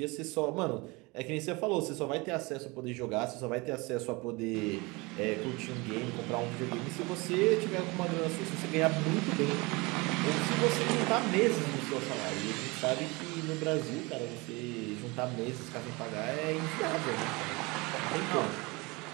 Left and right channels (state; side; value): quieter; left; 25.4 dB